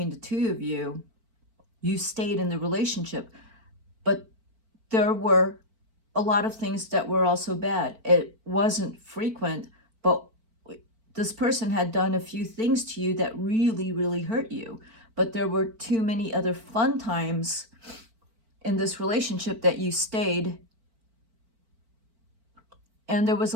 the two of you, you stayed in the relationship. But there were a lot of things that were also bad. It wasn't frequent, but this person had done a few things to you that really, really hurt you. But there were too many other fun times in this relationship that you stayed. And there was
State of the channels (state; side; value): late; left; 4.5 ms